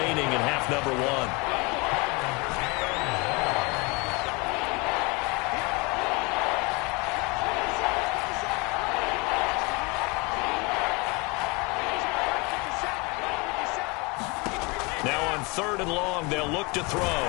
in half number 1. Now on 3rd and long, they'll look to throw.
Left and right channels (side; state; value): right; quieter; 27.8 dB